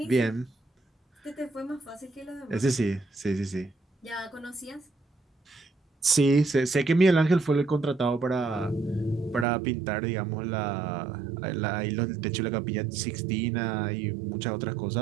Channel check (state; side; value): drops out; left; at 9.5 s